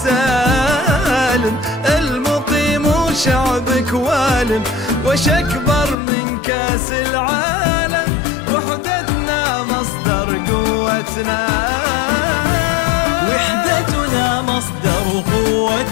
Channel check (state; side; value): drops out; right; at 6.0 s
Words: المقيم وشعبك والم. وش أكبر من كاس العالم، وحدتنا مصدر قوتنا. وحدتنا مصدر